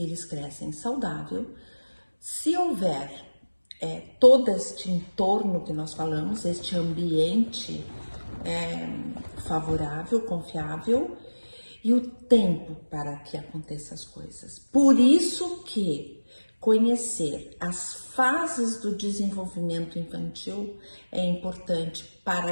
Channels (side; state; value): both; inverted; correlation -1.00